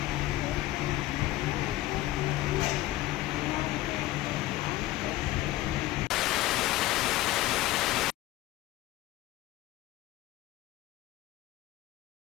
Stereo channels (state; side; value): quieter; right; 16.2 dB